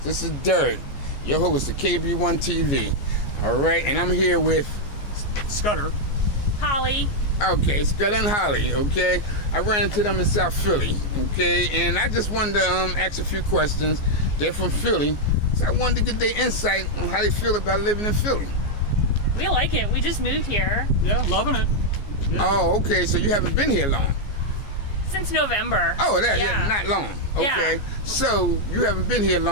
is Dirt, your host of KB1 TV. All right, and I'm here with Scudder. Holly. Okay, Scott and Holly. Okay, I ran into them in South Philly. Okay, and I just wanted to ask a few questions. They're from Philly, so I wanted to get their insight on how they feel about living in Philly. We like it. We just moved here Yeah, loving it. Yeah. Oh, okay, so you haven't been here long. since November. Oh, yeah, Yeah. not long. Okay, Yeah. so you haven't been here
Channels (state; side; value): late; right; 14 ms